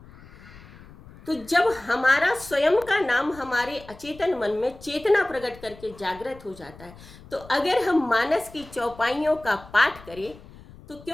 तो जब हमारा स्वयं का नाम हमारे अचेतन मन में चेतना प्रकट करके जागृत हो जाता है, तो अगर हम मानस की चौपाइयों का पाठ करें तो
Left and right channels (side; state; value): left; noise; rumble, 20 dB below the sound